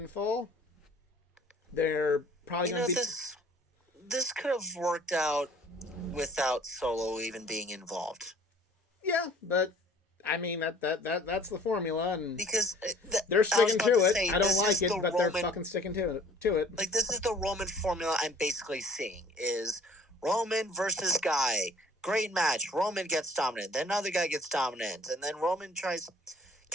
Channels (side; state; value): both; normal; correlation 0.52